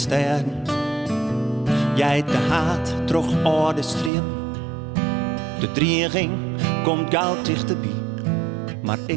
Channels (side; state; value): left; drops out; at 4.1 s